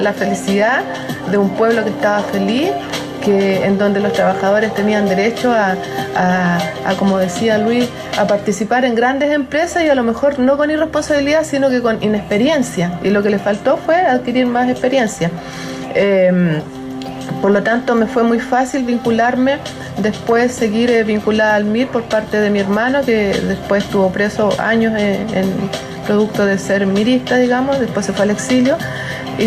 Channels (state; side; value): identical; both; correlation 1.00